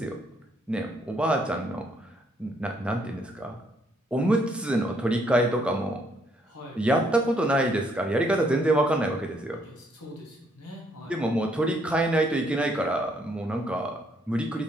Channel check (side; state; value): both; normal; correlation 0.70